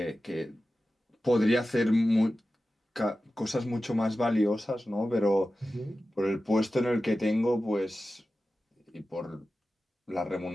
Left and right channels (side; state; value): both; normal; correlation 0.94